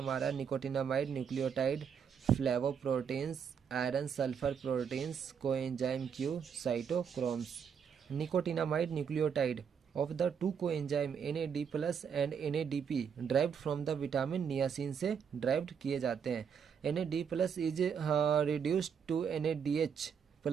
nicotinamide nucleotide, flavoproteins, iron sulphur proteins, coenzyme Q, cytochromes. Nicotinamide nucleotide of the two coenzyme NAD+ and NADP derived from the vitamin niacin से derived किए जाते हैं। NAD+ is reduced to NADH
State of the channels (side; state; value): left; quieter; 7.1 dB